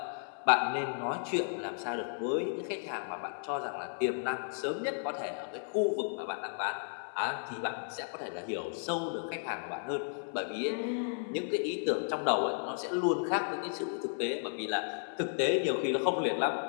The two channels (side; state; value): right; silent; 55 dB below the other